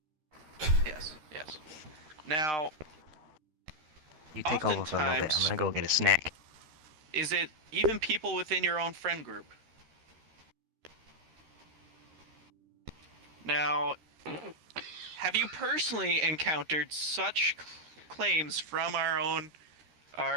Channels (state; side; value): late; left; 13 ms